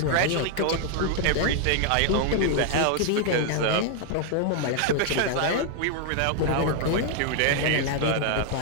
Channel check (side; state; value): both; different; correlation 0.00